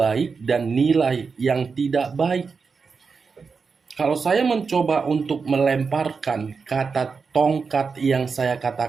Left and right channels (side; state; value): left; quieter; 5.1 dB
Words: dan nilai yang tidak baik. Kalau saya mencoba untuk melemparkan kata tongkat yang saya